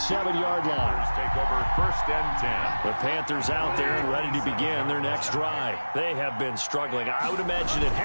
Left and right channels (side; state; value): both; inverted; correlation -1.00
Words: line. Take over 1st and 10. The Panthers out there and ready to begin their next drive. They have been struggling. I would imagine at